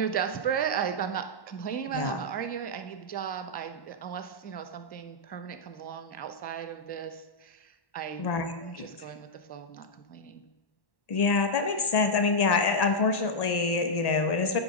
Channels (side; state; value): right; late; 1.1 ms